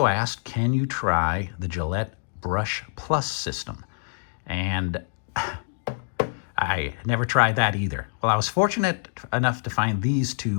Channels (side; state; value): right; silent; digital silence